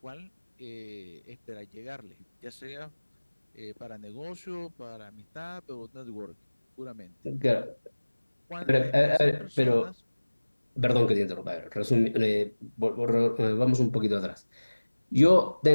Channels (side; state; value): both; inverted; correlation -1.00